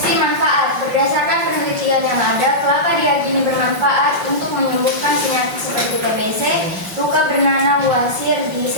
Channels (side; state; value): left; late; 4.6 ms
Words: manfaat. Berdasarkan penelitian yang ada, kelapa diyakini bermanfaat untuk menyembuhkan penyakit seperti TBC, luka bernanah, wasir,